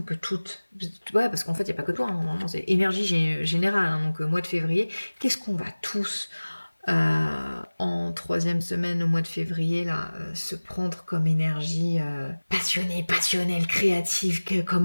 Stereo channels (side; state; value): both; inverted; correlation -1.00